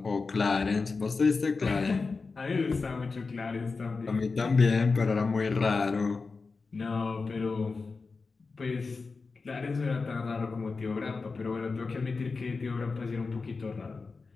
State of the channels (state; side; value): quieter; right; 4.3 dB